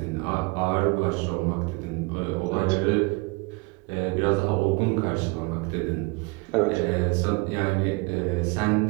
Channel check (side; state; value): left; quieter; 26.9 dB